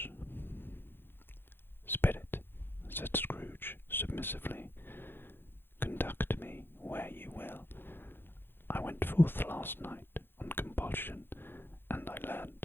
"Spit it," said Scrooge submissively. "Conduct me where you will. I went forth last night on compulsion, and I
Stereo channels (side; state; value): right; late; 0.10 ms